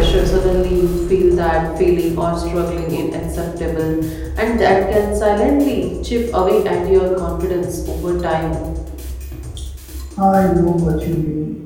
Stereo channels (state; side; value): identical; both; correlation 1.00